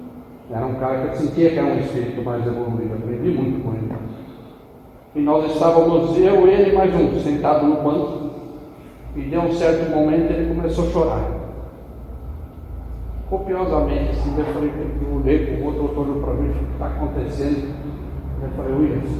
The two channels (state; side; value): identical; both; correlation 1.00